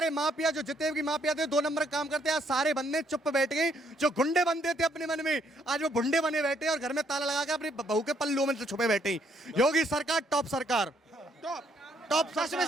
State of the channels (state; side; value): normal; both; correlation 0.70